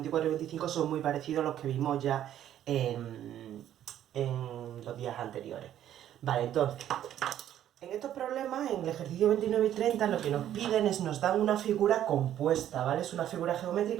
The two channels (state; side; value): quieter; left; 11.3 dB